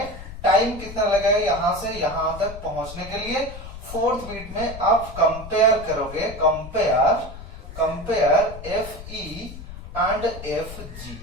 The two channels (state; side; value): noise; left; rumble, 12 dB below the sound